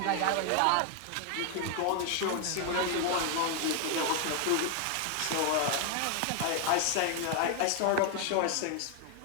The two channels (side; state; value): both; different; correlation 0.00